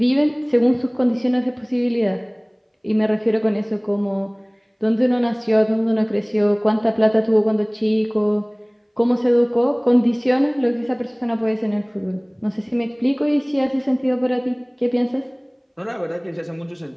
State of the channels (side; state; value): both; identical; correlation 1.00